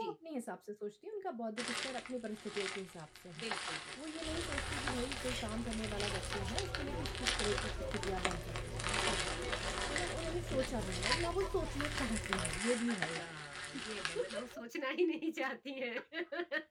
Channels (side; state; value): both; identical; correlation 1.00